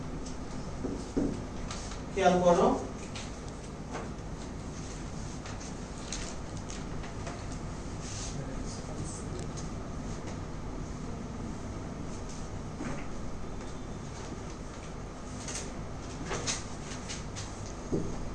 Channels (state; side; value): identical; both; correlation 1.00